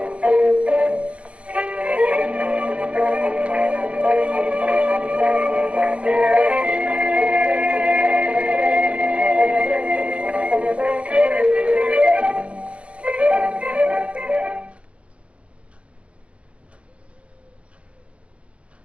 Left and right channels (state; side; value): late; left; 0.061 ms